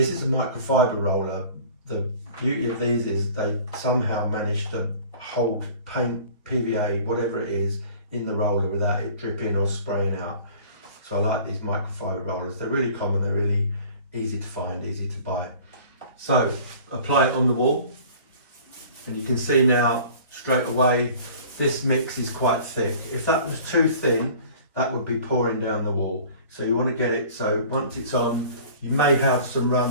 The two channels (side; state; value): both; inverted; correlation -0.46